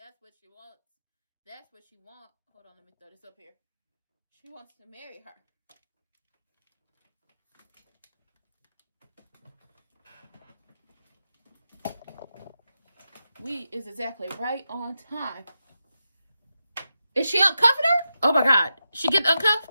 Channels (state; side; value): inverted; both; correlation -0.88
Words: what she wants. That's what she wants. Hold on, let me throw this up here. She wants to marry her. We is exactly right on time. Is she uncuffing her? Oh my God. She get